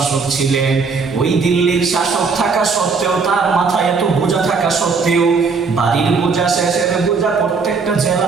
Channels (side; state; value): left; quieter; 4.8 dB